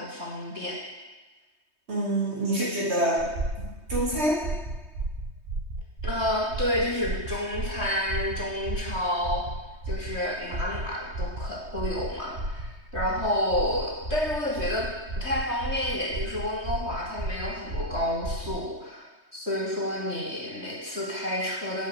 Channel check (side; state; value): left; late; 3.2 ms